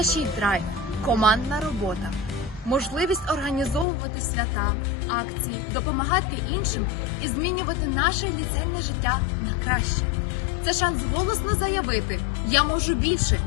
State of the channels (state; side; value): drops out; right; at 3.9 s